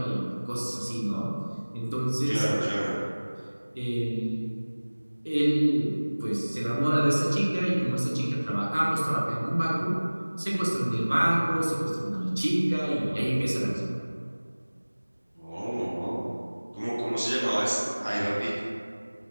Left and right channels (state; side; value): inverted; both; correlation -1.00